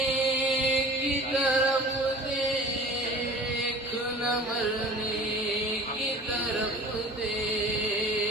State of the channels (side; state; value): both; normal; correlation 0.42